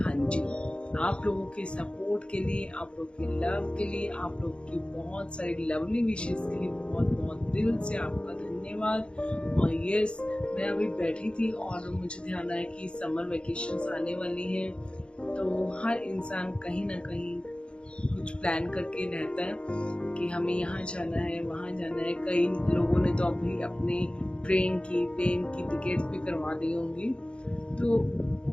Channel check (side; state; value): right; late; 0.056 ms